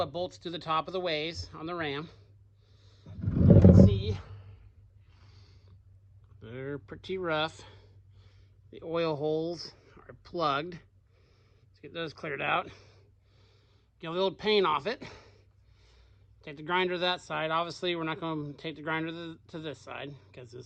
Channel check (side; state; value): both; identical; correlation 1.00